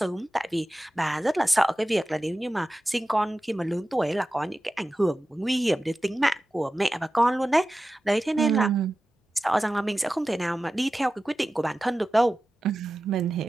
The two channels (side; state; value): both; normal; correlation 0.94